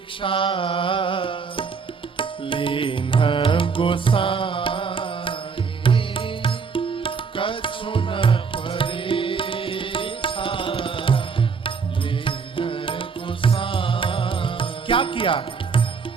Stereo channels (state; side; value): quieter; left; 5.4 dB